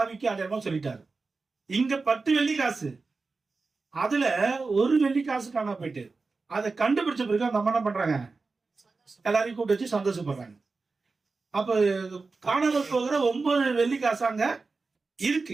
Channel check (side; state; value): left; quieter; 4.1 dB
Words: அடையாளமா சொல்லிட்டாரு. இங்க 10 வெள்ளி காசு, அதுல 1 வெள்ளி காசு காணா போயிட்டு அதை கண்டுபிடிச்ச பிறகு அந்த அம்மா என்ன பண்றாங்க? எல்லாரையும் கூப்பிட்டு வச்சு சந்தோஷப்படுறாங்க. அப்ப காணாமல் போகிற 9 வெள்ளி காசு அங்க